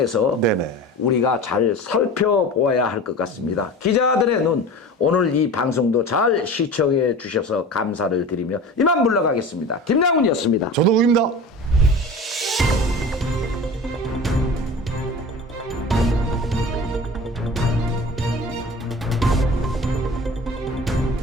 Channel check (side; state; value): both; normal; correlation 0.36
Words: 네네. 우리가 잘 살펴보아야 할 것 같습니다. 기자들의 눈, 오늘 이 방송도 잘 시청해 주셔서 감사를 드리며 이만 물러가겠습니다. 김양훈이었습니다. 조동욱입니다.